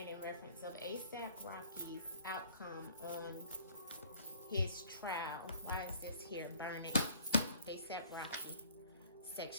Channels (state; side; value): inverted; both; correlation -0.55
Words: in reference of ASAP Rocky's outcome on his trial. Why is this here? Burning. ASAP Rocky.